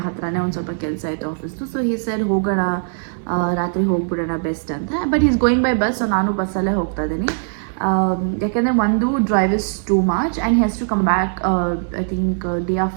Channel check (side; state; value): left; silent; 66 dB below the other